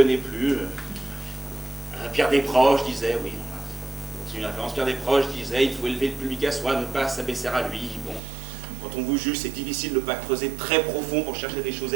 plus. Pierre Desproges disait, oui, c'est une référence, Pierre Desproges disait, il faut élever le public à soi, ne pas s'abaisser à lui. Bon, quand on vous juge, c'est difficile de ne pas creuser très profond pour chercher des choses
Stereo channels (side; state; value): left; drops out; at 8.2 s